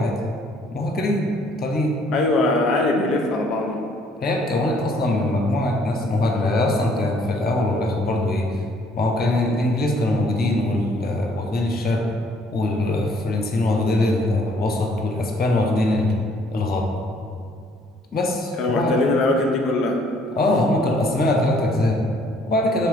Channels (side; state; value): both; normal; correlation 0.63